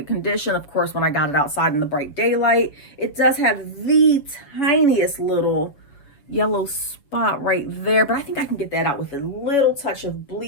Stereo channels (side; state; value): right; late; 7.0 ms